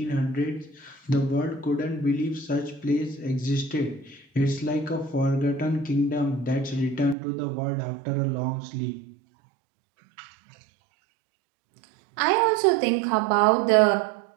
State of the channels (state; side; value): drops out; left; at 7.2 s